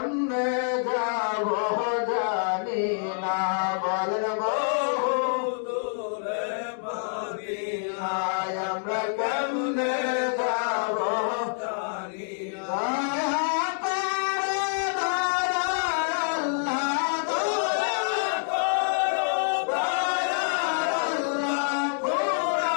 যাব জানি না বলেন বহু দূরে মদিনা আমরা কেমনে যাব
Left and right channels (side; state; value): right; silent; digital silence